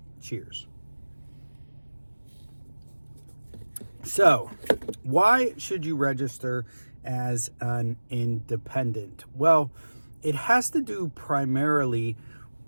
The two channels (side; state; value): both; inverted; correlation -1.00